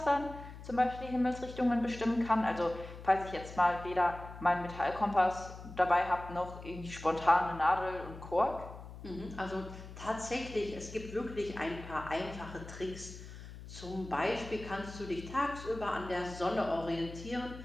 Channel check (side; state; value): left; noise; hum, 13 dB below the sound